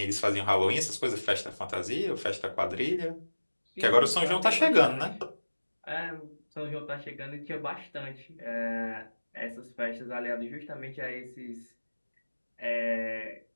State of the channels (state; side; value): inverted; both; correlation -1.00